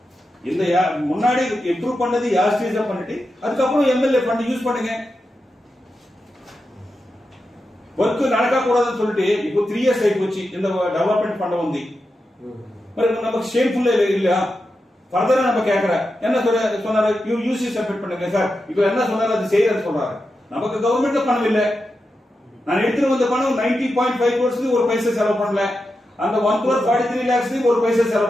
இந்த முன்னாடி இம்ப்ரூவ் பண்ணது யார் ஸ்டேஜா பண்ணிட்டு அதுக்கப்புறம் எம்எல்ஏ ஃபண்ட் யூஸ் பண்ணுங்க. ஒர்க் நடக்க கூடாதுன்னு சொல்லிட்டு இப்போ 3 இயர்ஸ் ஆகி போச்சு இந்த டெவலப்மெண்ட் ஃபண்ட் வந்து. మరి நமக்கு ஷேம்ஃபுல் இல்ல. ஃபர்தரா நம்ம கேக்குற என்ன சொன்னாரு, யூசி சப்மிட் பண்ணுங்க சார். இப்போ என்ன சொன்னாரு அது செய்யறன்னு சொல்றாரு. நமக்கு கவர்மெண்ட்ல பணம் இல்ல. நான் எடுத்துட்டு வந்த பணம் 90.5 crores ஒரு பைசா செலவு பண்ணல. அந்த 1,43 lakhs ஒரு பைசா செலவு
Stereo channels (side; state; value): both; normal; correlation 0.89